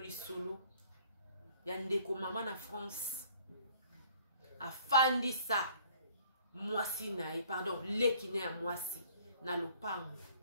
lisolo ya ndeko mama na France afandisa mwasi na ye pardon leki ne ya mwasi na lopango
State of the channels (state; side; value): inverted; both; correlation -0.57